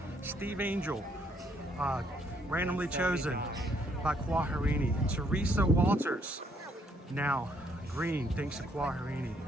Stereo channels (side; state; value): both; normal; correlation 0.69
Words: Steve Angel, randomly chosen by Quaharini. Teresa Walters, now green, thanks to Quaharini.